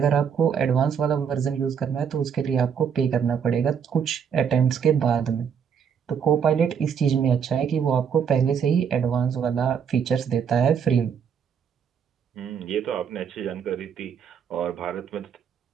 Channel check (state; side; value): quieter; left; 7.3 dB